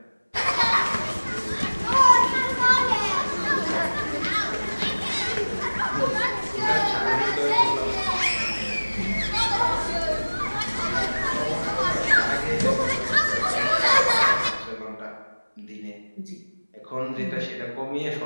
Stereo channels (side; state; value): both; inverted; correlation -1.00